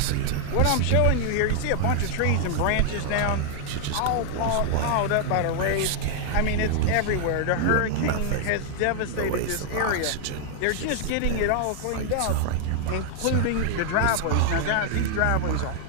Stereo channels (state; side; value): different; both; correlation 0.00